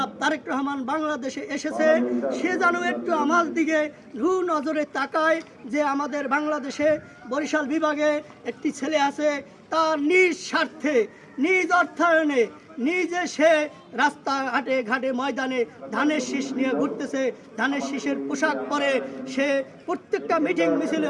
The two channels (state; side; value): identical; both; correlation 1.00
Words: তারেক রহমান বাংলাদেশে এসেছে, সে যেন একটু আমার দিকে রু নজরে তাকায় যে আমাদের বাংলাদেশে বরিশাল বিভাগে একটি ছেলে আছে, তার নিজ স্বার্থে নিজ অর্থায়নে নিজে সে রাস্তাঘাটে ঘাটে ময়দানে ধানের শীষ নিয়ে ঘুরতেছে, ধানের শীষের পোশাক পরে সে প্রত্যেকটা মিটিং মিছিলে